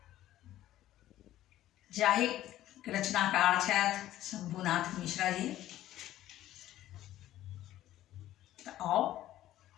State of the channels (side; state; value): right; quieter; 13.7 dB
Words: जाहि रचनाकार छथि शंभुनाथ मिश्रा जी। तो आओ